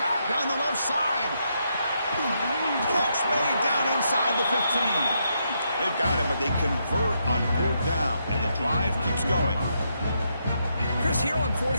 down the left side. Catch made down inside the 15. They've got him, but they convert on 4th down, and the drive keeps going. Chris, here on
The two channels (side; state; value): both; inverted; correlation -0.79